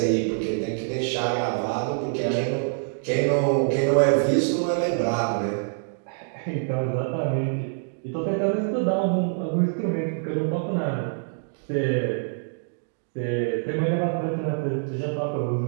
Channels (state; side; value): silent; left; digital silence